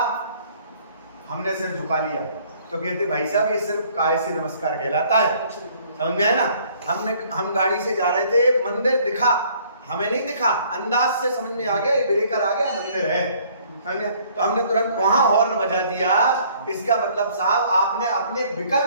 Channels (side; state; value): both; inverted; correlation -0.59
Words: हमने सिर झुका लिया, तो कहते भाई साहब ये सिर्फ काय से नमस्कार कहलाता है, समझ में आया ना? हम गाड़ी से जा रहे थे, मंदिर दिखा, हमें नहीं दिखा, अंदाज से समझ में आ गया ये ब्रेकर आ गया, मंदिर है, समझे? तो हमने तुरंत वहां हॉर्न बजा दिया। इसका मतलब साहब आपने अपने